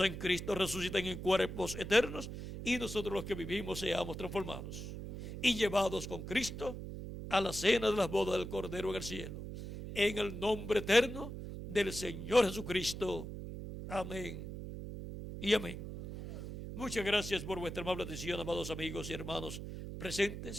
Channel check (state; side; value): noise; right; hum, 8 dB below the sound